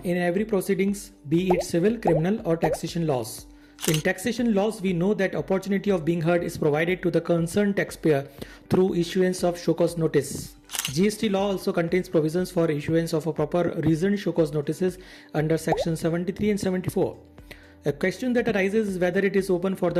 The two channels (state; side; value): identical; both; correlation 1.00